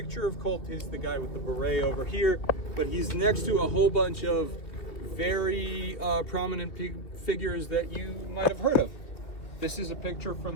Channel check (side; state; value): right; late; 2.9 ms